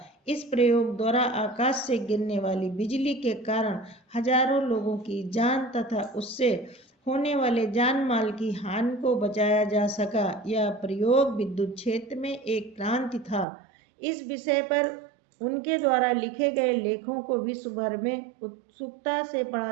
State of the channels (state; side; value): drops out; left; at 13.5 s